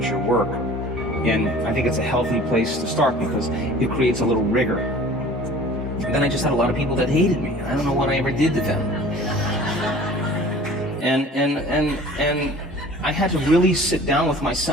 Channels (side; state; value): both; normal; correlation 0.45